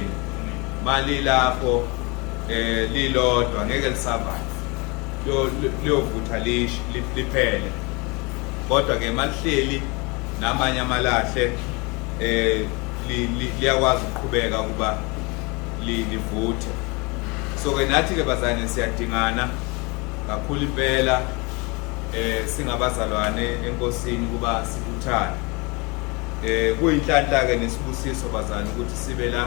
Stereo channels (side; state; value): right; quieter; 28.3 dB